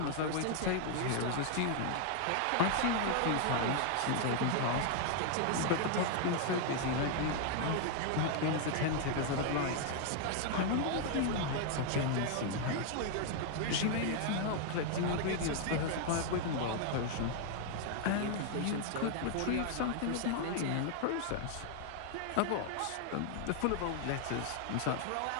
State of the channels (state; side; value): different; both; correlation 0.00